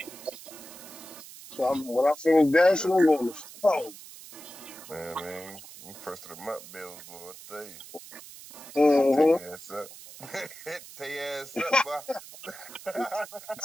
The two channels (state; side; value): noise; right; hiss, 16 dB below the sound